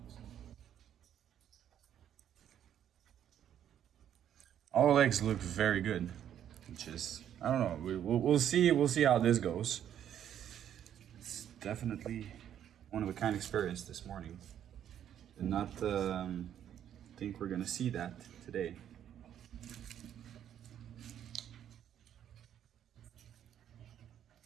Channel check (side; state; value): left; quieter; 10.1 dB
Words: All eggs look very good, which is, I don't know. We'll see how this goes. It's definitely one of a kind experience this morning. Did not think we're gonna see that today.